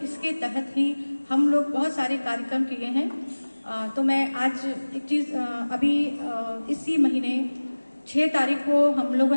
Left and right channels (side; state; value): both; inverted; correlation -1.00